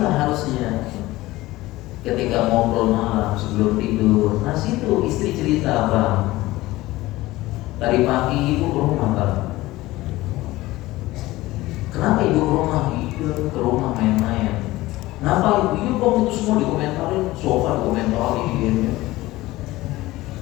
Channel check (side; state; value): right; quieter; 18.2 dB